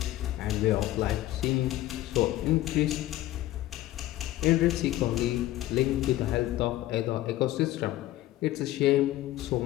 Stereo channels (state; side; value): quieter; right; 15.3 dB